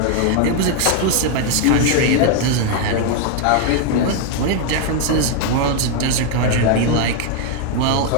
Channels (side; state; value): both; different; correlation 0.00